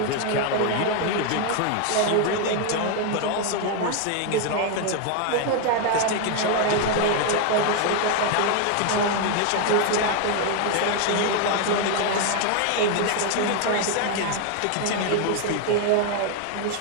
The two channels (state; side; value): different; both; correlation 0.01